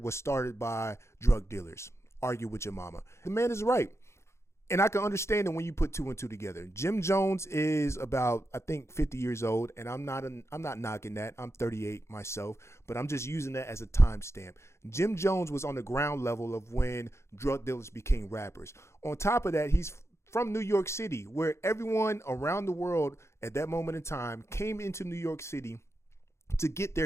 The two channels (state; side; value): late; right; 0.13 ms